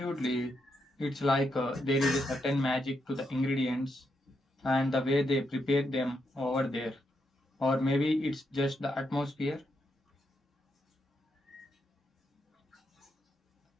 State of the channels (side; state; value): both; normal; correlation 0.81